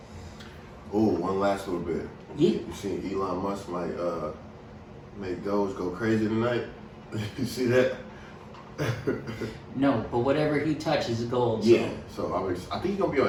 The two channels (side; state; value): both; identical; correlation 1.00